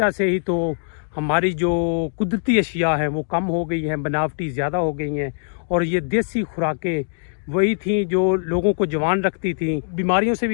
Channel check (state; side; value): silent; right; digital silence